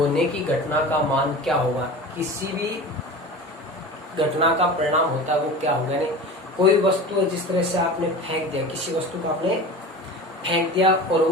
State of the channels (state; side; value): normal; both; correlation 0.33